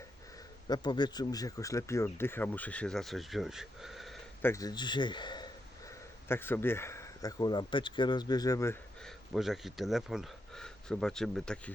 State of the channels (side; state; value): both; normal; correlation 0.82